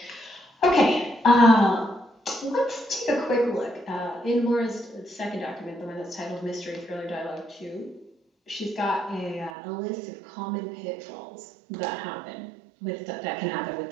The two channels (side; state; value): left; drops out; at 9.5 s